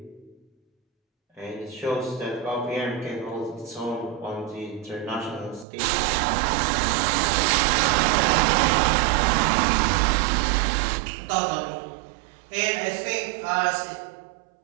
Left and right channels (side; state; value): left; drops out; at 5.7 s